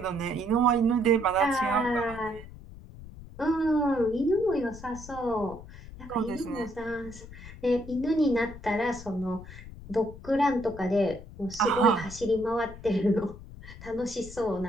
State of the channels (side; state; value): left; noise; rumble, 15 dB below the sound